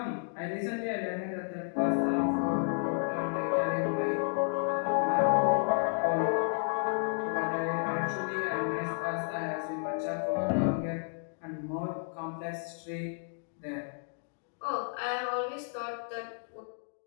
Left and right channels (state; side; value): silent; right; digital silence